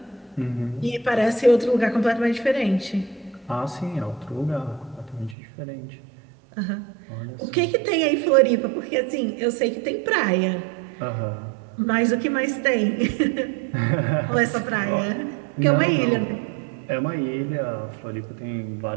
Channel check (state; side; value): drops out; left; at 5.4 s